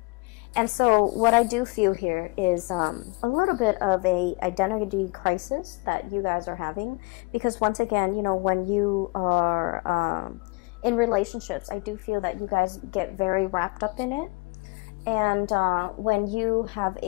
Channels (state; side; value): quieter; right; 28.1 dB